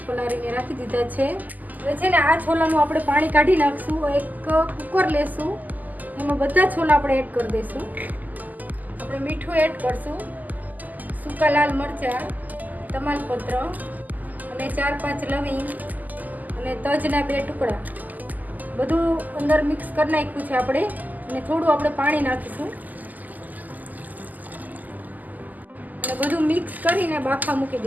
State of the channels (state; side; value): late; left; 0.082 ms